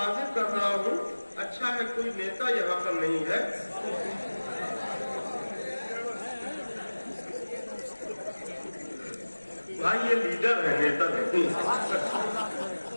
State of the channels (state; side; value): inverted; both; correlation -1.00